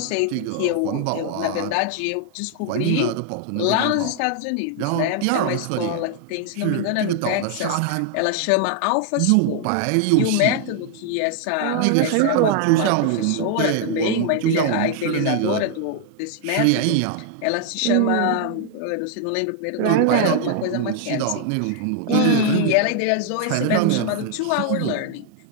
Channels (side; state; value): both; different; correlation 0.00